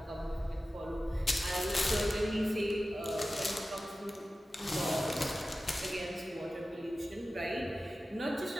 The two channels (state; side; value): normal; both; correlation 0.95